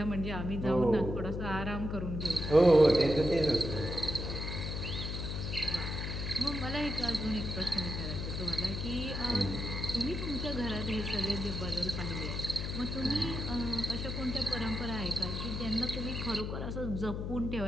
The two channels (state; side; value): noise; left; hum, 4 dB below the sound